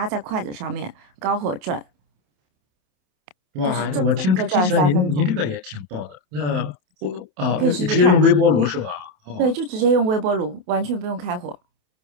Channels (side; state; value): left; late; 28 ms